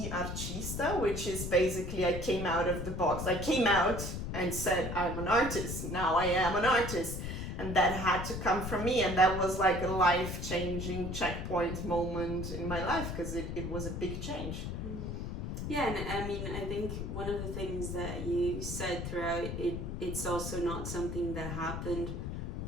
artista, which is basically I came out of the box. I came out and said I'm an artist. Now I am an artist. And that had to come from me, and that was like a life-changing checkpoint moment in my life, because it was a big change. Yeah, and I mean, I think one of the things that you said throughout it's also not something that happened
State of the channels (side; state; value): left; noise; rumble, 5 dB below the sound